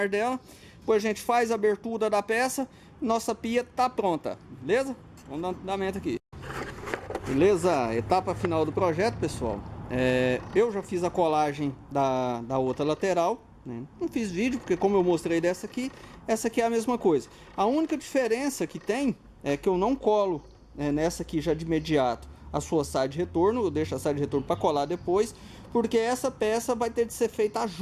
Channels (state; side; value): identical; both; correlation 1.00